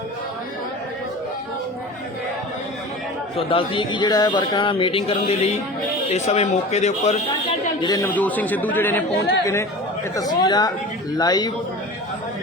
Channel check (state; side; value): normal; both; correlation 0.35